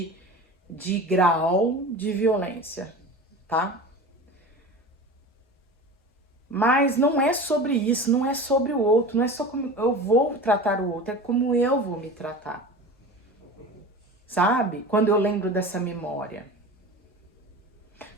grau de violência, tá? Mas não é sobre isso, não é sobre o outro, não é só como eu vou tratar o outro, é como eu vou me tratar. Sabe? Quando eu lembro dessa memória.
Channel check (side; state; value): both; normal; correlation 0.33